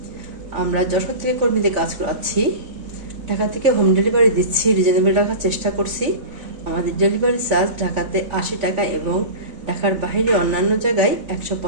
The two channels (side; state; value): left; late; 3.5 ms